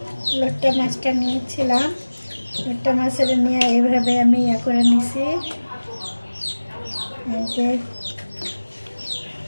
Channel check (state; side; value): inverted; both; correlation -1.00